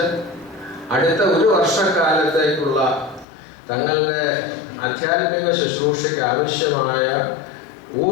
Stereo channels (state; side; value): drops out; right; at 3.2 s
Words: അടുത്ത 1 വർഷക്കാലത്തേക്കുള്ള തങ്ങളുടെ ആധ്യാത്മിക ശുശ്രൂഷയ്ക്ക് ആവശ്യമായ